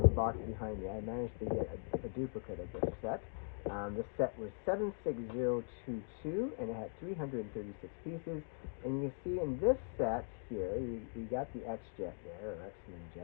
box behind me. I managed to get a duplicate of this set. This set was 76022, and it had 336 pieces. And you can see in this set here, we got the X-jet there, or X-Men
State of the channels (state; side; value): silent; right; 51 dB below the other